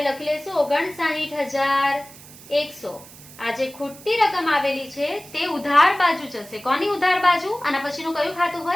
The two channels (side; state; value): right; noise; hiss, 19 dB below the sound